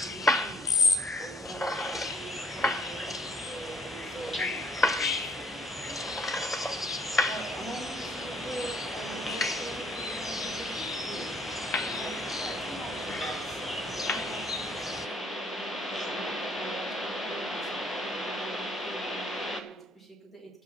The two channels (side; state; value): both; normal; correlation 0.61